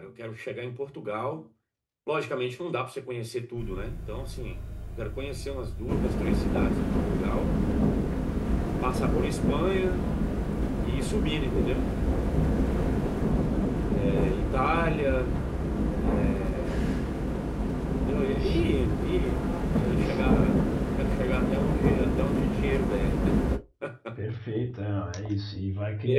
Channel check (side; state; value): both; identical; correlation 1.00